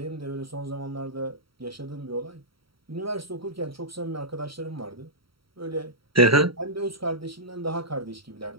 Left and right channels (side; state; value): left; late; 0.75 ms